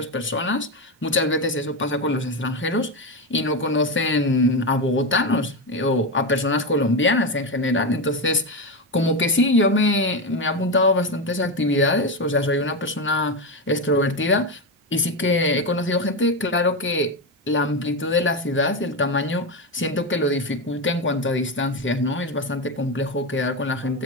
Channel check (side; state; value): both; normal; correlation 0.13